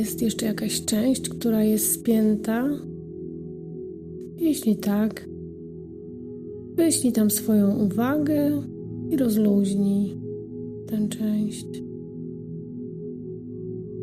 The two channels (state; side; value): identical; both; correlation 1.00